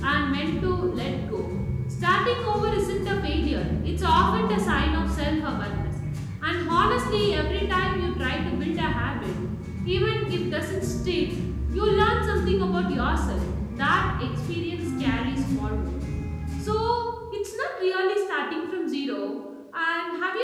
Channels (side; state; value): both; identical; correlation 1.00